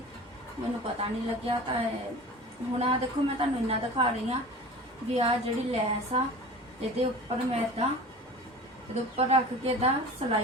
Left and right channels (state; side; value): normal; both; correlation 0.38